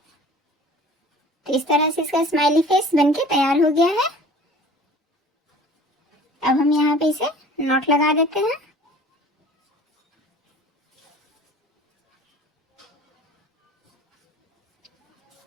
तरह से इसका स्माइली फेस बनके तैयार हो गया है। अब हम यहाँ पे इसे नॉट लगा देते हैं।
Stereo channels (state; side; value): normal; both; correlation 0.46